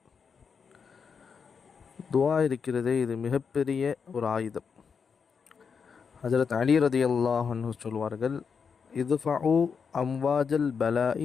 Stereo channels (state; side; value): quieter; right; 6.1 dB